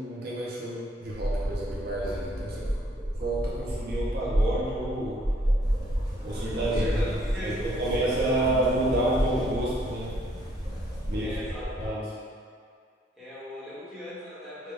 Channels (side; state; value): both; normal; correlation 0.66